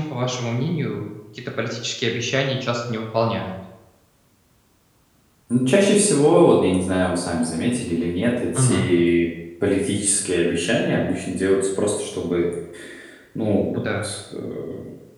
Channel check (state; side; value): identical; both; correlation 1.00